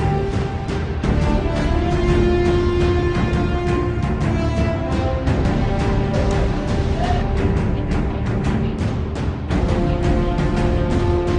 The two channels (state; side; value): identical; both; correlation 1.00